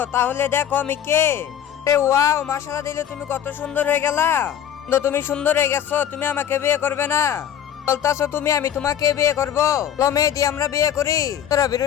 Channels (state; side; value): quieter; right; 9.8 dB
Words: তাহলে দেখো আমি কে। ওয়াও, মাশাআল্লাহ দিলে তুমি কত সুন্দর হয়ে গেলা। তো তুমি সুন্দর হয়ে গেছো, তুমি আমাকে বিয়ে করবে না বলতাছো তুমি? আমি তোমাকে বিয়ে করবো। মেয়ে দিয়ে আমরা বিয়ে করি। তোরা